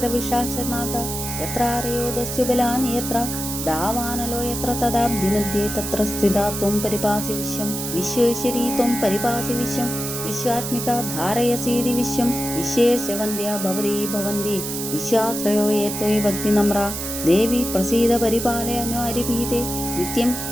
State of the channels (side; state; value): right; noise; hiss, 5 dB below the sound